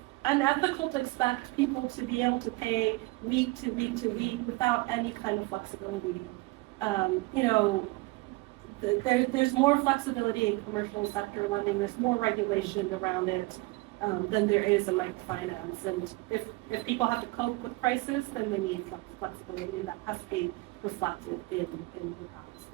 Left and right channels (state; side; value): quieter; left; 23.1 dB